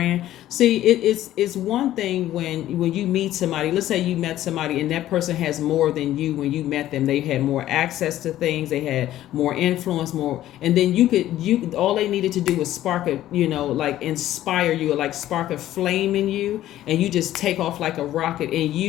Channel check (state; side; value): quieter; right; 13.5 dB